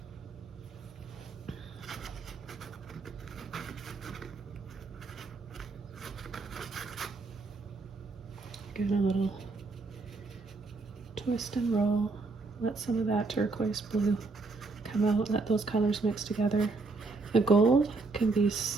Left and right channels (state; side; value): quieter; left; 3.8 dB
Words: Get a little twist and roll. Let some of that turquoise blue come out. Let those colors mix together. The gold can be